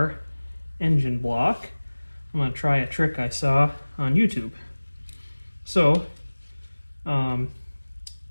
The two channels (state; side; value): inverted; both; correlation -1.00